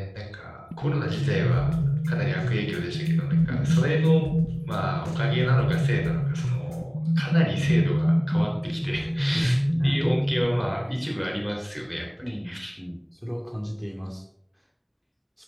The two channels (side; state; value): both; identical; correlation 1.00